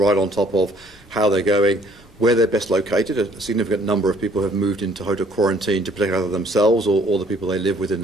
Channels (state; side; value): normal; both; correlation 0.60